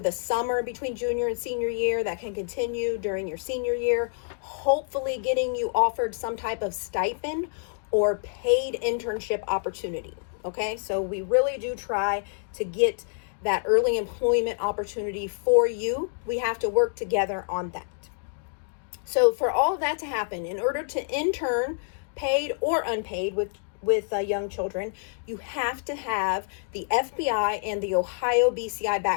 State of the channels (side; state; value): right; silent; digital silence